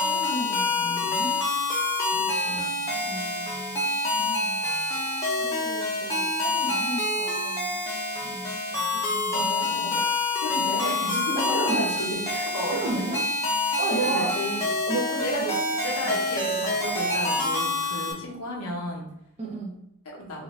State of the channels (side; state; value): both; normal; correlation 0.11